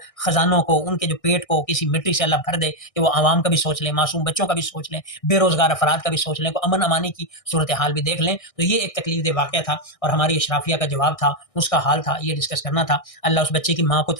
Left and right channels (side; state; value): right; late; 1.6 ms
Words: خزانوں کو، ان کے جو پیٹ کو کسی مٹی سے اللہ بھر دے کہ وہ عوام کا بھی سوچ لیں، معصوم بچوں کا بھی سوچ لیں، بے روزگار افراد کا بھی سوچ لیں، کو امن امانی کی صورتحال بھی دیکھ لیں. تو یہ ایک تکلیف دہ واقعہ تھا اور ہماری اشرافیہ کا جواب تھا، اس کا حال تھا، یہ ڈسکس کرنا تھا. اللہ اس بچے کی ماں کو